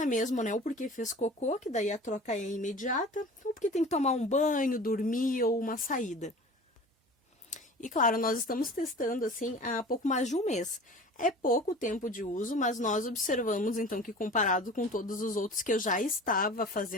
mesmo, né? Ou porque fez cocô, que daí a troca é imediata, ou porque tem que tomar um banho, dormir ou uma saída. E claro, nós estamos testando assim há pouco mais de um mês. É pouco tempo de uso, mas nós observamos então que comparado com todos os outros que eu já estava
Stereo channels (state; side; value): normal; both; correlation 0.40